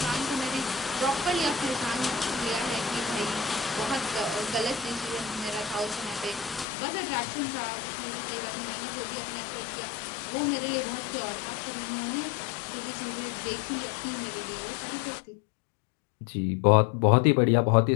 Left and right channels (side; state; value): right; drops out; at 6.7 s